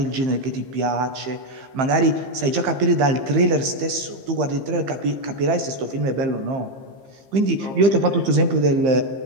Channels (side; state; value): left; late; 15 ms